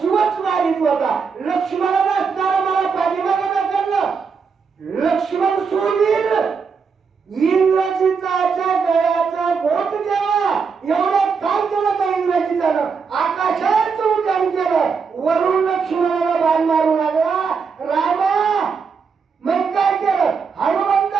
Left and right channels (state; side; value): quieter; left; 5.6 dB